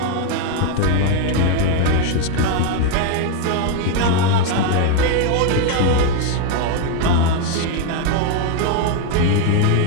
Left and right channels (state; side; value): different; both; correlation 0.01